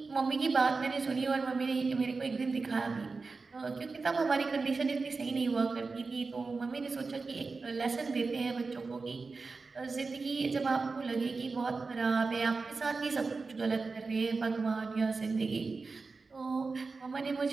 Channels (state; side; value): quieter; left; 4.2 dB